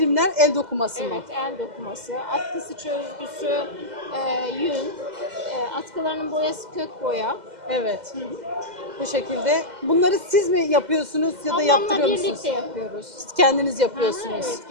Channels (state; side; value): late; left; 2.0 ms